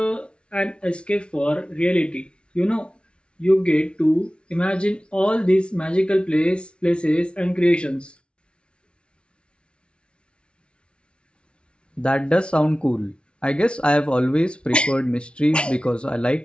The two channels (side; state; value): right; late; 0.058 ms